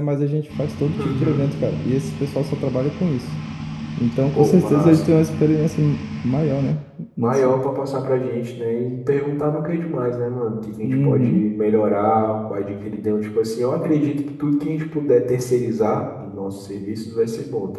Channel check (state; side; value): identical; both; correlation 1.00